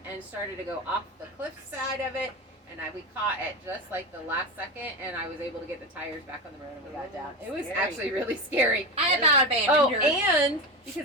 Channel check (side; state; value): both; normal; correlation 0.21